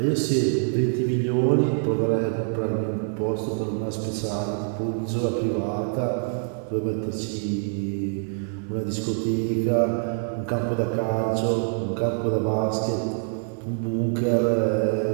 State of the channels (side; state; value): left; silent; 62 dB below the other